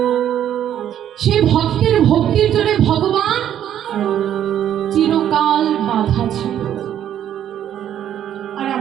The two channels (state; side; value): quieter; left; 10.5 dB